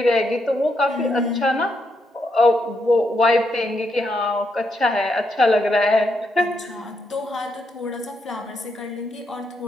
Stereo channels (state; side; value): normal; both; correlation 0.79